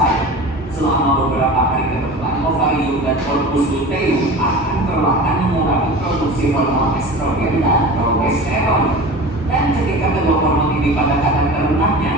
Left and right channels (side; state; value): both; normal; correlation 0.34